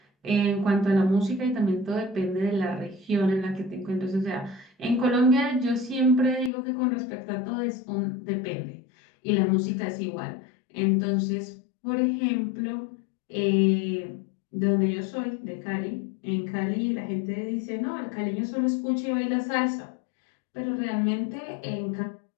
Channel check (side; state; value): right; drops out; at 6.5 s